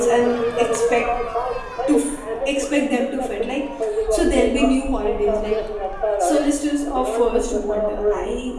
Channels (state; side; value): identical; both; correlation 1.00